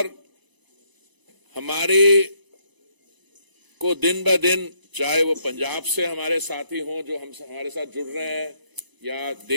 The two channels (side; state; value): left; late; 1.0 ms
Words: हमारे को दिन ब दिन, चाहे वो पंजाब से हमारे साथी हों जो हमारे साथ जुड़ रहे हैं या